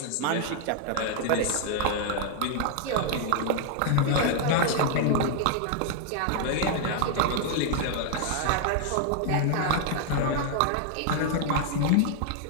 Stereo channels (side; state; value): both; different; correlation 0.00